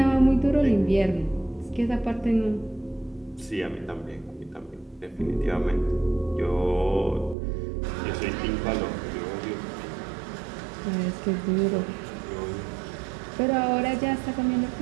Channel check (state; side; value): drops out; left; at 7.4 s